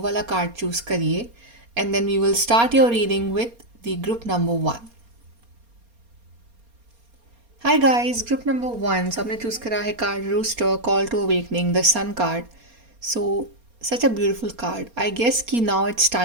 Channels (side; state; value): left; late; 4.3 ms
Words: वाला कार्ड चूज़ करिए and then we will start your reading with the group number 1। Hi guys, group number 1। So आपने चूज़ करा है card rooster call to awakening, the sun card. So such a beautiful card. I guess कि now it's